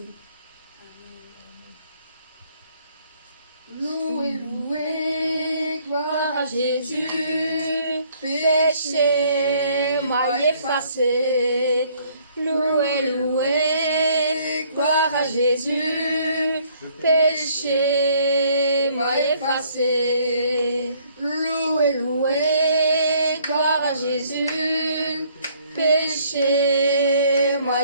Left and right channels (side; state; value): both; inverted; correlation -0.63